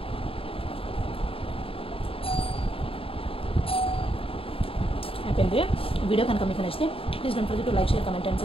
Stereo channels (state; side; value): late; right; 0.27 ms